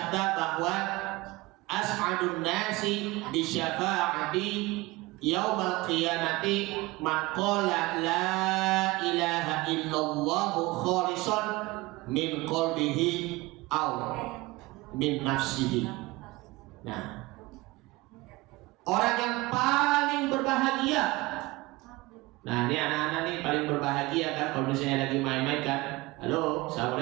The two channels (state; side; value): quieter; left; 21.6 dB